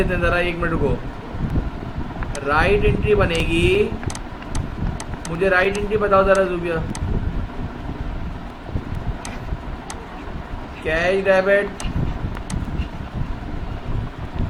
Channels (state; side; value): identical; both; correlation 1.00